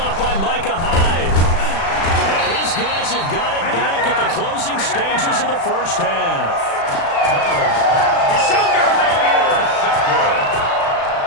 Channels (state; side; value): late; right; 36 ms